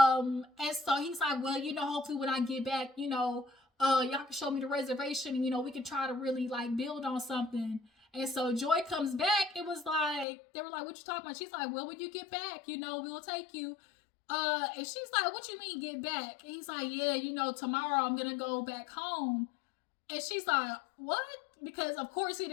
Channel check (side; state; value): right; drops out; at 10.2 s